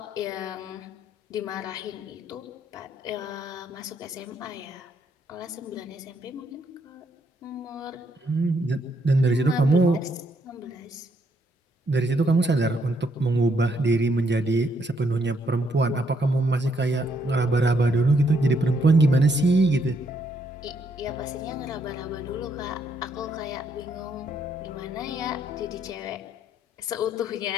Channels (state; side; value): normal; both; correlation 0.73